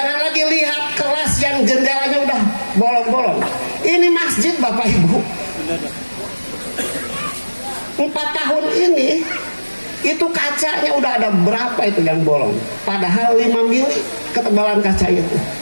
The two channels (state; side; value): inverted; both; correlation -1.00